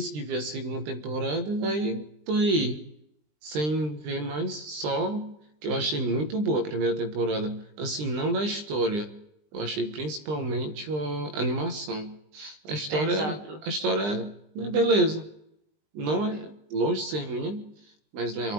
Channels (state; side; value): late; left; 20 ms